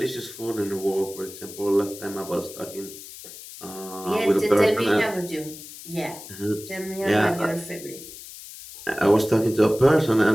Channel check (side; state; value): left; noise; hiss, 15 dB below the sound